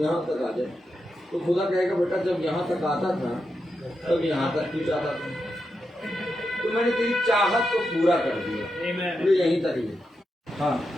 तक आ जाए। तो खुदा कहेगा बेटा जब यहाँ तक आता था तब यहाँ तक भी जाता था, तो मैंने तेरी चाहत को पूरा कर दिया, तो यहीं तक ही। हाँ,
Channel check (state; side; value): normal; both; correlation 0.86